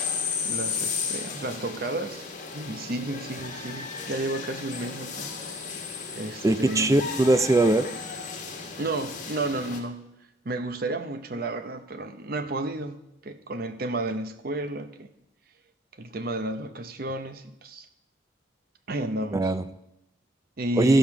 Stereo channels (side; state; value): both; normal; correlation 0.56